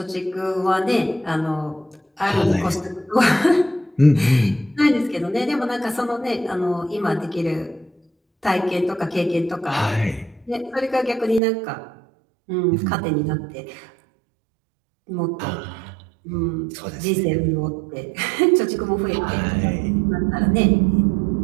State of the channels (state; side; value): drops out; left; at 11.4 s